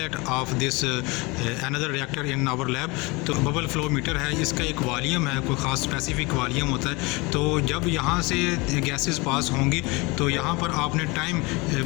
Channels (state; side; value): quieter; right; 25.7 dB